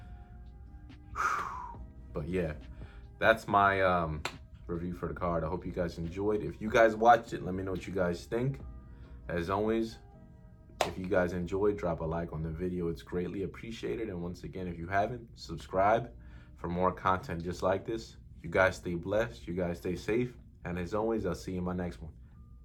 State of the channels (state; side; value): identical; both; correlation 1.00